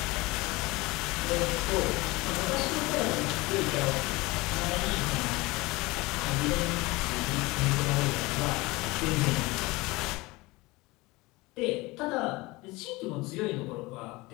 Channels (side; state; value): right; quieter; 22.3 dB